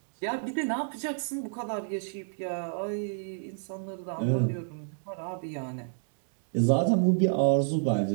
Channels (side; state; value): left; silent; digital silence